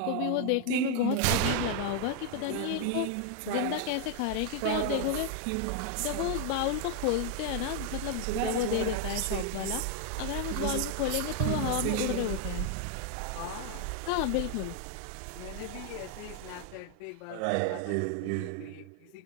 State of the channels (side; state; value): both; different; correlation 0.00